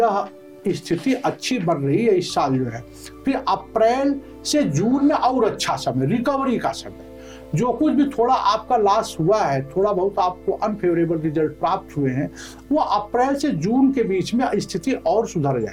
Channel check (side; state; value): both; identical; correlation 1.00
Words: स्थिति अच्छी बन रही है इस साल जो है। फिर अप्रैल से जून में और अच्छा समय, रिकवरी का समय। जो कुछ भी थोड़ा आपका लॉस हुआ है, थोड़ा बहुत आपको अनफेवरेबल रिजल्ट प्राप्त हुए हैं, वो अप्रैल से जून के बीच में स्थिति और सुधर